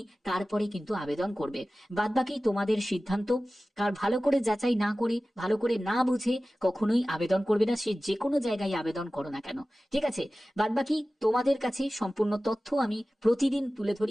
তারপরে কিন্তু আবেদন করবে, বাদ বাকি তোমাদের সিদ্ধান্ত। কারণ ভালো করে যাচাই না করে, ভালো করে না বুঝে কখনোই আবেদন করবে না, সে যে কোনো জায়গায় আবেদন করো না কেন, ঠিক ঠিক আছে, বাদবাকি তোমাদের কাছে সম্পূর্ণ তথ্য আমি প্রতিদিন তুলে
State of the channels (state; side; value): normal; both; correlation 0.96